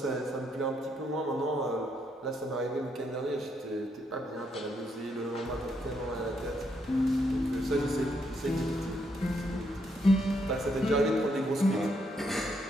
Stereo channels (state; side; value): normal; both; correlation 0.76